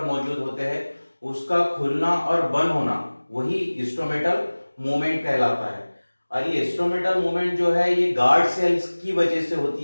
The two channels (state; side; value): inverted; both; correlation -1.00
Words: मौजूद होते हैं, उसका खुलना और बंद होना वही स्टोमेटल मूवमेंट कहलाता है। और ये स्टोमेटल मूवमेंट जो है ये गार्ड सेल्स की वजह से होती